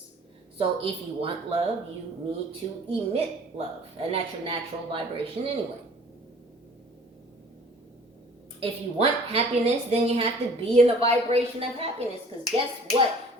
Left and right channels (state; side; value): normal; both; correlation 0.51